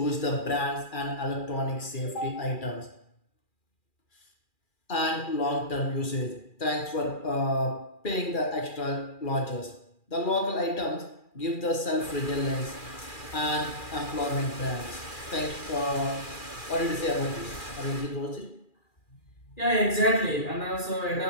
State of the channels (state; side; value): late; right; 2.4 ms